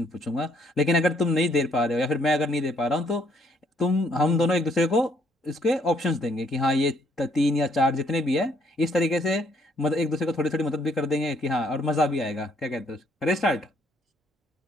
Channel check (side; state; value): both; normal; correlation 0.68